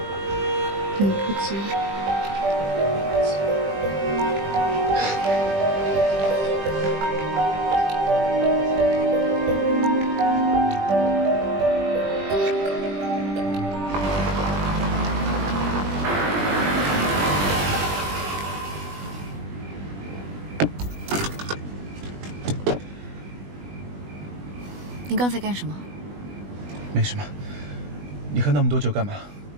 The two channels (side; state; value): left; late; 20 ms